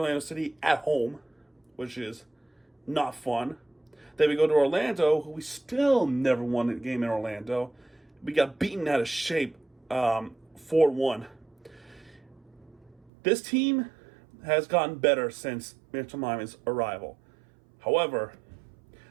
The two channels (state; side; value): drops out; left; at 13.1 s